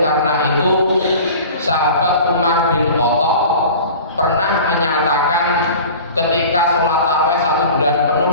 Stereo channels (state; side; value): inverted; both; correlation -0.40